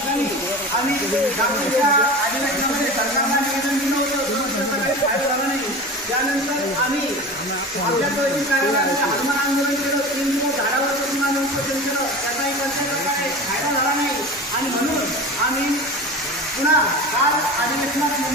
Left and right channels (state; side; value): normal; both; correlation 0.32